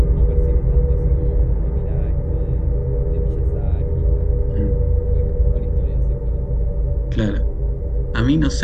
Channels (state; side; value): identical; both; correlation 1.00